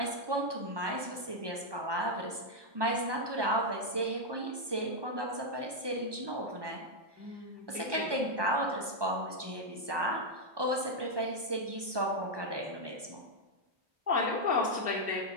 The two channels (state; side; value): late; left; 1.2 ms